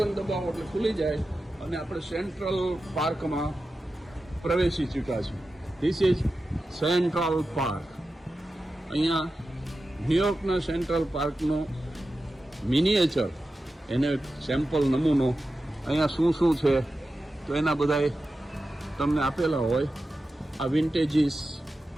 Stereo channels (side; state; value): both; normal; correlation 0.92